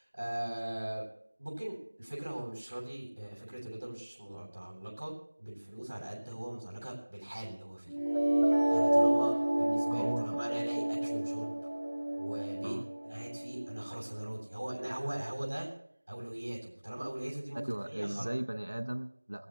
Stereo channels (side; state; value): both; inverted; correlation -1.00